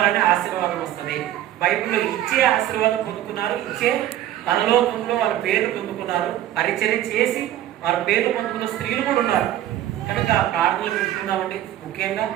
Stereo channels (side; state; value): left; quieter; 12.7 dB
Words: ఆశీర్వాదం వస్తుంది. బైబిల్లో ఇచ్చే ఆశీర్వాదం పొందుకున్నారు, ఇచ్చే పరలోకంలో వారి పేర్లు పొందుకున్నారు. పరిచర్య చేసి వారి పేర్లు పొందుకున్న స్త్రీలు కూడా ఉన్నారు. కనుక ప్రార్థనలు పెట్టుకుందామండి. ముఖ్యంగా